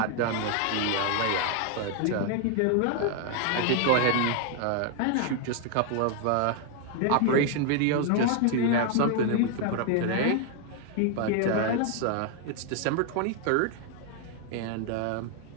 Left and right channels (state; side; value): different; both; correlation 0.00